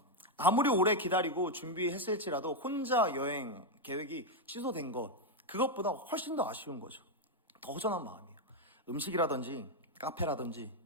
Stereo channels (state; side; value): normal; both; correlation 0.03